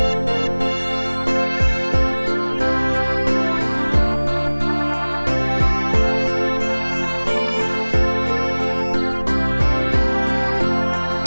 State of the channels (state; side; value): inverted; both; correlation -1.00